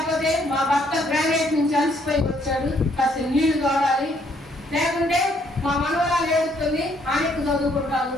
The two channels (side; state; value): both; normal; correlation 0.68